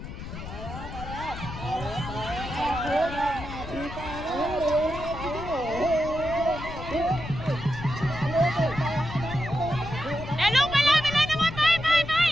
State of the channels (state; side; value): noise; left; rumble, 10 dB below the sound